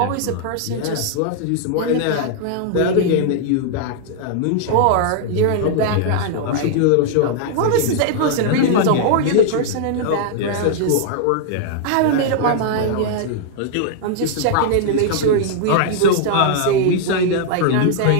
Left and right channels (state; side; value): different; both; correlation -0.01